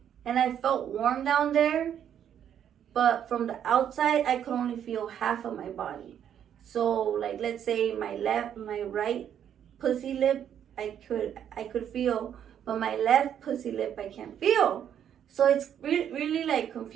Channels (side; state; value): left; quieter; 9.4 dB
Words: And I felt warm down there. But from the outside, I could only feel half of my body. So, let's say my right pussy lip, I could feel. But my left pussy lip, I can't feel. So it's really,